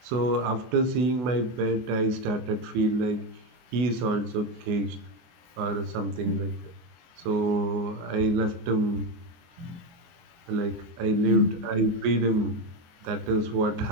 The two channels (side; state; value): left; late; 23 ms